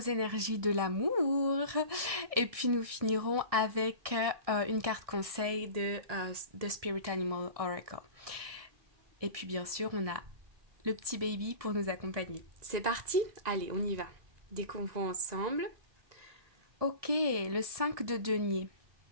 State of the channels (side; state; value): left; late; 1.7 ms